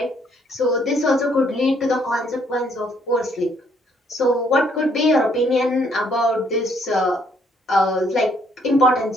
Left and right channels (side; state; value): both; normal; correlation 0.67